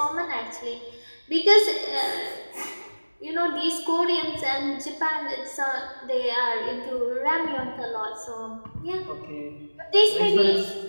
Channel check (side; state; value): both; inverted; correlation -1.00